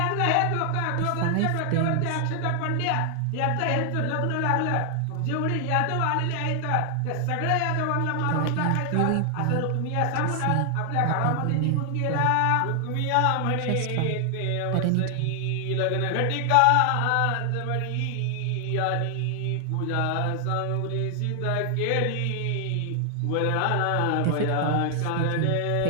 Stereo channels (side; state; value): both; different; correlation 0.00